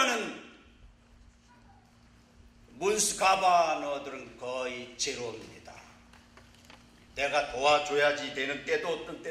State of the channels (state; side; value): identical; both; correlation 1.00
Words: 문스 가바너들은 거의 제로입니다. 내가 도와줘야지 되는 때도 어떤